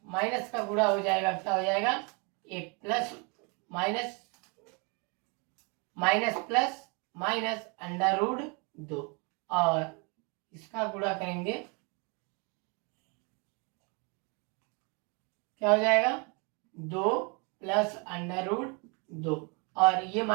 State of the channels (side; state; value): left; quieter; 32.6 dB